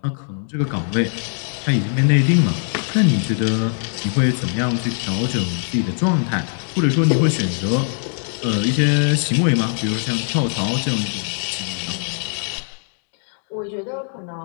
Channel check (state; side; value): silent; right; 63 dB below the other